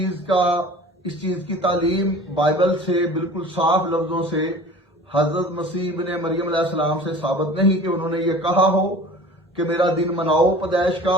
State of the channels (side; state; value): both; normal; correlation 0.42